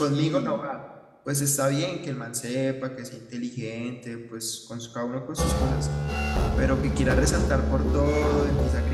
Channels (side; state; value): both; identical; correlation 1.00